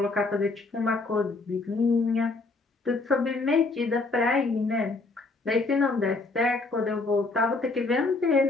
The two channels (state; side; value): quieter; right; 3.5 dB